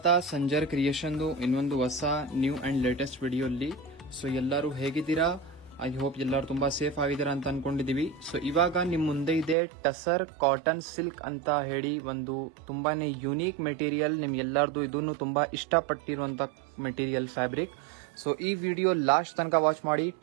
ಸಂಜರ್ ಕ್ರಿಯೇಷನ್ದು ಇನ್ನೊಂದು ಹೊಸ ನ್ಯೂ ಅಂಡ್ ಲೇಟೆಸ್ಟ್ ವಿಡಿಯೋಲ್ಲಿ. ಸೊ ಎಲ್ಲರೂ ಹೇಗಿದ್ದೀರಾ? ಐ ಹೋಪ್ ಎಲ್ಲರೂ ತುಂಬಾ ಸೇಫ್ ಆಗಿದ್ದೀರಾ ಅಂತ ಅನ್ಕೊಂಡಿದೀವಿ. ಸೊ ಇವಾಗ ನಿಮ್ ಮುಂದೆ ಇದೆ ಟಸರ್ ಕಾಟನ್ ಸಿಲ್ಕ್ ಅಂತ ಹೇಳಿ ಒಂದು ತುಂಬಾನೇ ಯುನೀಕ್ ಮೆಟೀರಿಯಲ್. ನಿಮ್ ಎಲ್ಲಾರ್ದು ಇದನ್ನು ತುಂಬಾ ಇಷ್ಟಪಟ್ಟಿರುವಂತ ಮೆಟೀರಿಯಲ್ ಫ್ಯಾಬ್ರಿಕ್. ಸೊ ಈ ವಿಡಿಯೋ ಲಾಸ್ಟ್ ತನಕ ವಾಚ್ ಮಾಡಿ.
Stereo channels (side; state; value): left; drops out; at 9.6 s